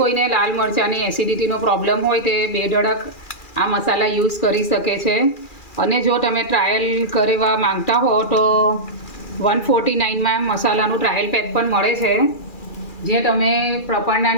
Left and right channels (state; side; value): late; right; 2.4 ms